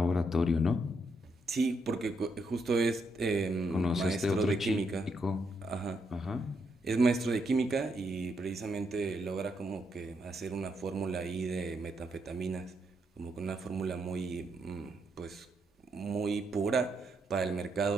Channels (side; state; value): both; normal; correlation 0.78